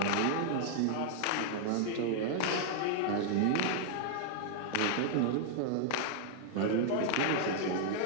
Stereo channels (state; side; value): different; both; correlation 0.00